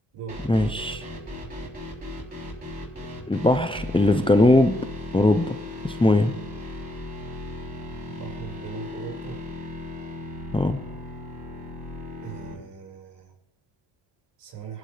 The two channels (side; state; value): both; normal; correlation 0.78